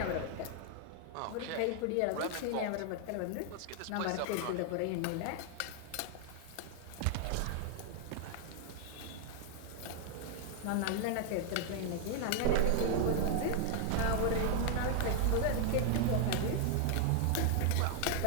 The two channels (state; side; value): different; both; correlation 0.00